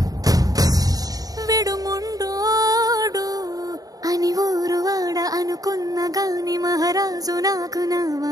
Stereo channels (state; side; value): late; left; 0.18 ms